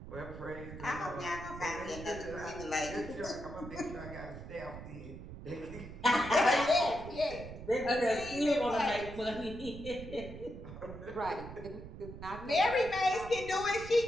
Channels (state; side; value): noise; right; rumble, 12 dB below the sound